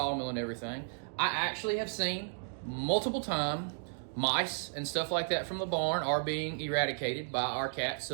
and everything, I actually have seen multiple times mice and stuff like that from the barn are being eradicated by our cats.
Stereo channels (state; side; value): silent; left; digital silence